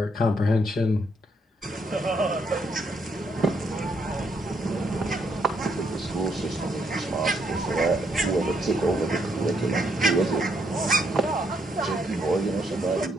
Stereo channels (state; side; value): normal; both; correlation 0.74